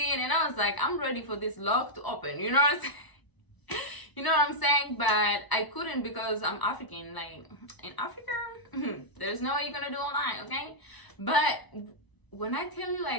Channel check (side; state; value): right; late; 1.0 ms